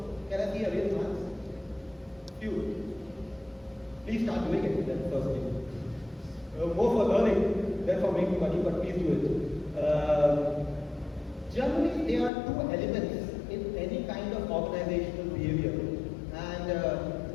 Can I see a real hands? Few. Please start doing it then firstly. More for learning than for making money, but please do it. Generally, there are two elements in any kind of organizational behavior. And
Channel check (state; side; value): drops out; right; at 12.3 s